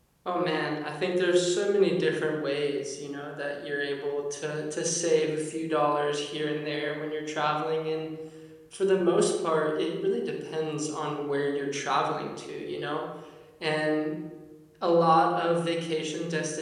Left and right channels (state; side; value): identical; both; correlation 1.00